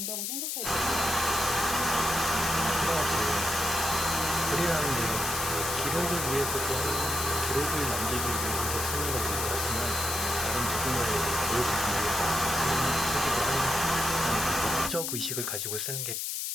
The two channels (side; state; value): left; noise; hiss, 2 dB below the sound